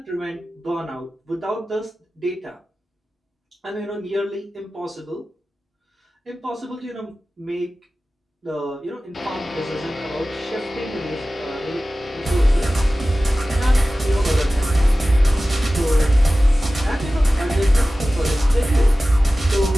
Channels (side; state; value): both; normal; correlation 0.96